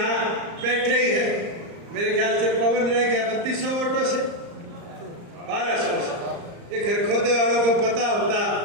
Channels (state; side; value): late; left; 34 ms